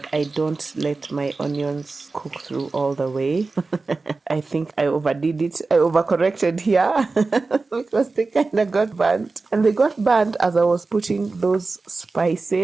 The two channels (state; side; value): quieter; left; 3.8 dB